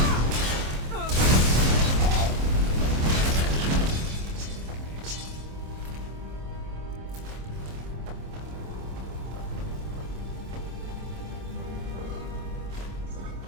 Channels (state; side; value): late; left; 26 ms